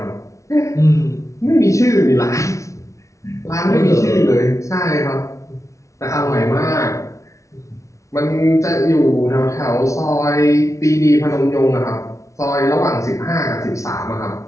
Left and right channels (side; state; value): right; late; 0.15 ms